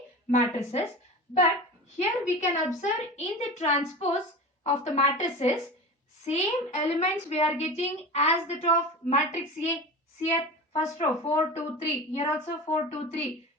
matrices. But here we can observe in the transpose of the matrices, same elements we are getting as that of matrix A. Here first row 4, 2, 3. Here also 4, 2, 3.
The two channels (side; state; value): both; normal; correlation 0.31